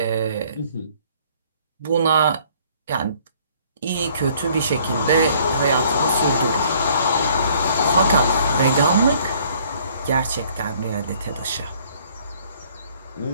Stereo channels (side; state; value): both; inverted; correlation -0.59